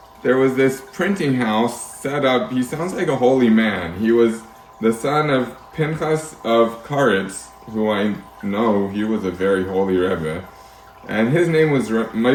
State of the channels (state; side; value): identical; both; correlation 1.00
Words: there was this printing house set up. He sounds like a holy man. He was the son of Pinchas of Karetz, who I know he was a very holy Rebbe, and his name was